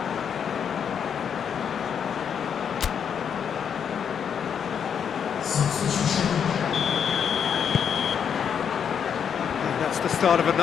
And that's the start of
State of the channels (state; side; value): quieter; right; 7.7 dB